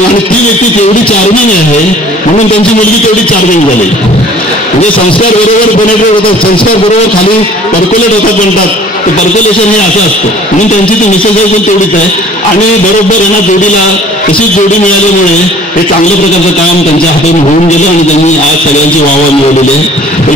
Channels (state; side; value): normal; both; correlation 0.51